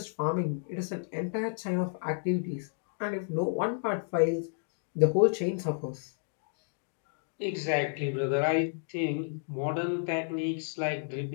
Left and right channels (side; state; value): right; silent; digital silence